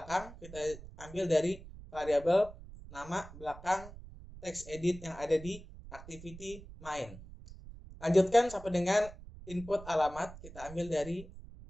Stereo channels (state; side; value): noise; right; rumble, 16 dB below the sound